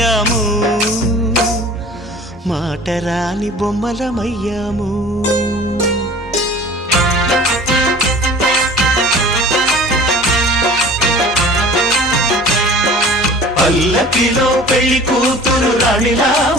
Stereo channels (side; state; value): both; normal; correlation 0.44